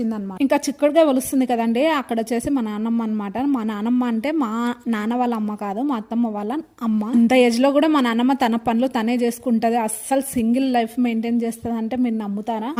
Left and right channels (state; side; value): identical; both; correlation 1.00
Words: ఇంకా చిక్కుడుగాయ ఒలుస్తుంది కదండీ! అక్కడొచ్చేసి మా నాన్నమ్మ అనమాట. మా నాన్నమ్మ అంటే మా నాన్న వాళ్ళ అమ్మ కాదు. మా అత్తమ్మ వాళ్ళ అమ్మ. ఇంత ఏజ్‌లో కూడా మా నాన్నమ్మ తన పనులు తనే చేసుకుంటది. అస్సలు సింగిల్ లైఫ్ మెయింటైన్ చేస్తదంటే మీరు నమ్ముతారా?